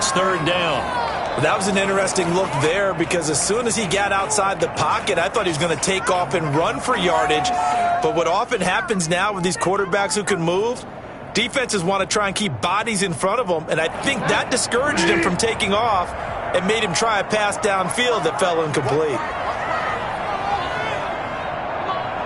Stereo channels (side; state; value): both; identical; correlation 1.00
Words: 3rd down. That was an interesting look there because as soon as he got outside the pocket, I thought he was going to take off and run for yardage. But what often happens now with these quarterbacks who can move, defenses want to try and keep bodies in front of them, and I think that discouraged him from taking off and made him try a pass downfield that fell incomplete.